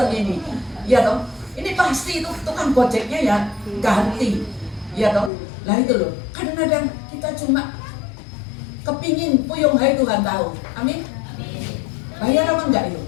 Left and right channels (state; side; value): drops out; right; at 5.3 s